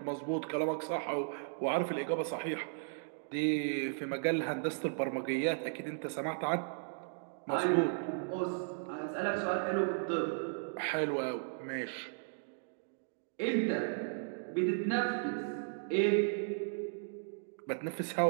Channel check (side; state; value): left; silent; digital silence